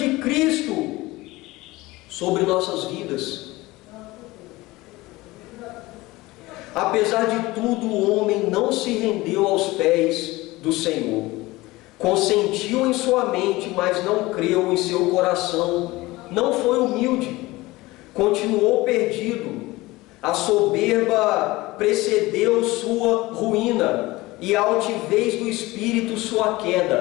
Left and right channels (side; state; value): right; quieter; 20.2 dB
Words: Cristo sobre nossas vidas. Apesar de tudo, o homem não se rendeu aos pés do Senhor. Consentiu em sua mente, mas não creu em seu coração. Não foi humilde. Continuou perdido. A soberba precedeu sua ruína, e a altivez do espírito sua